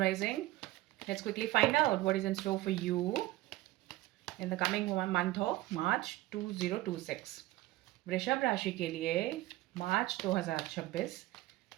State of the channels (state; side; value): quieter; left; 17.2 dB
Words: Let's quickly find out what is in store for you in the coming month of March 2026. वृषभ राशि के लिए मार्च 2026